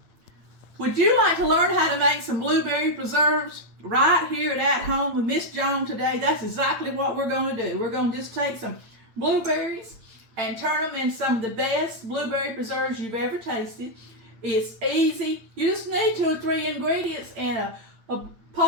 Would you like to learn how to make some blueberry preserves right here at home with Miss Joan today? That's exactly what we're going to do. We're going to just take some blueberries and turn them into some of the best blueberry preserves you've ever tasted. It's easy. You just need 2 or 3 ingredients and a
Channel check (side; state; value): left; late; 8.8 ms